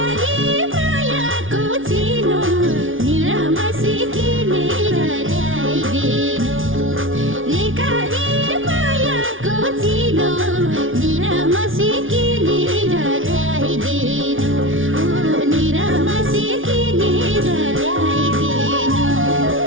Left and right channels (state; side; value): late; left; 0.57 ms